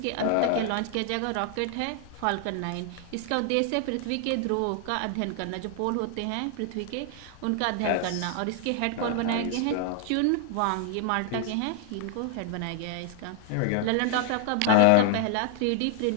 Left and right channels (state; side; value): different; both; correlation 0.00